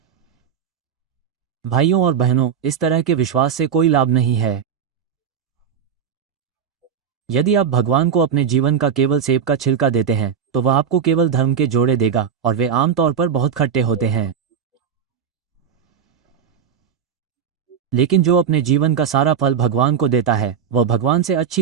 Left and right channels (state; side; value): quieter; left; 7.5 dB